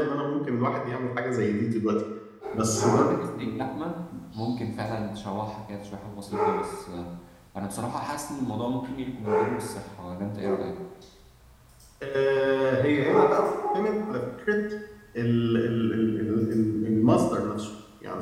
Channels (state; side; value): identical; both; correlation 1.00